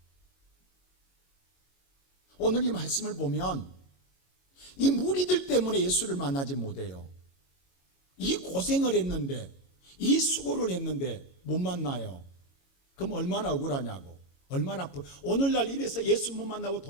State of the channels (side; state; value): right; late; 22 ms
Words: 오늘 이 말씀을 보면 이 무리들 때문에 예수를 만나지 못해요. 이 고생을 했는데, 이 수고를 했는데 못 만나요. 그럼 얼마나 억울하냐고, 얼마나 아프. 오늘날 이래서 예수 못 만나고